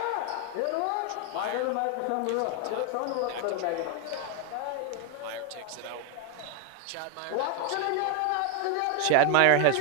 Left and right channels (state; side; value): different; both; correlation 0.01